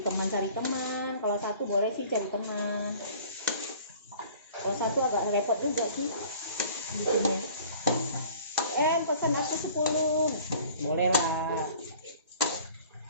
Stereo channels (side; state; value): both; inverted; correlation -0.49